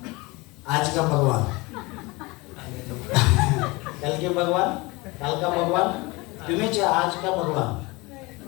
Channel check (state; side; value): quieter; right; 24.1 dB